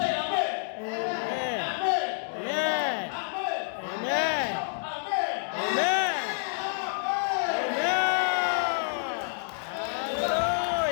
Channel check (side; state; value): right; silent; digital silence